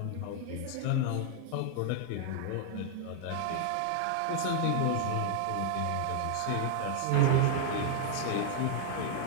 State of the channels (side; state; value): both; different; correlation 0.00